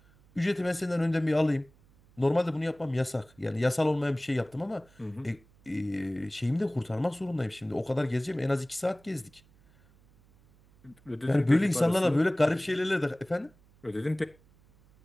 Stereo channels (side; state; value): right; noise; hum, 29 dB below the sound